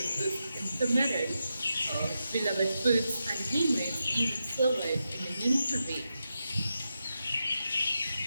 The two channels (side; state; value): both; inverted; correlation -0.88